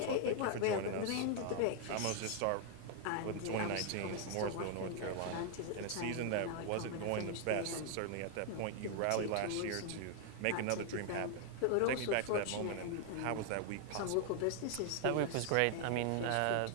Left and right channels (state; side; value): different; both; correlation 0.00